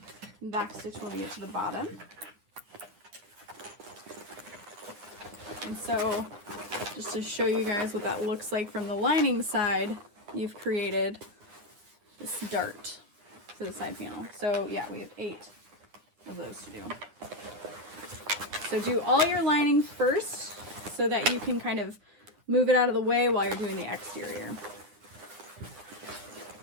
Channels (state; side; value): late; left; 9.8 ms